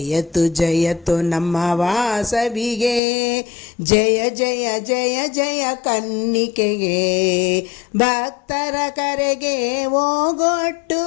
ಜಯತು ನಮ್ಮ ವಾಸವಿಗೆ, ಜಯ ಜಯ ಜಯ ಜಯ ಕನ್ನಿಕೆಗೆ. ಭಕ್ತರ ಕರೆಗೆ ಓಗೊಟ್ಟು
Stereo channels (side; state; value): right; drops out; at 3.0 s